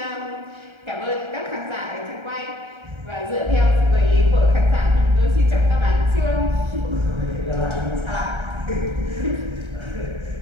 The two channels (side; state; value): left; late; 1.3 ms